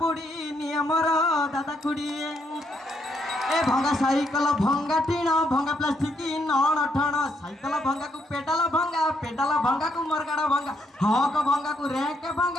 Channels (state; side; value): normal; both; correlation 0.75